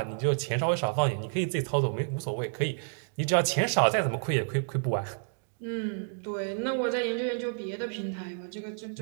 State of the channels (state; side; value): silent; left; digital silence